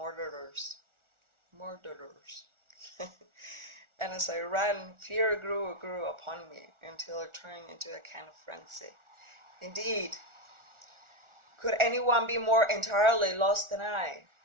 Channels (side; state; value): left; late; 1.4 ms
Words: And as I ran, fear grew upon me, until it turned into a kind of frenzy. Indeed, could anyone be more entirely lost than I?